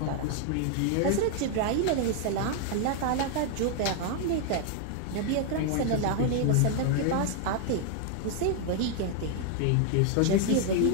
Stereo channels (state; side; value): different; both; correlation 0.00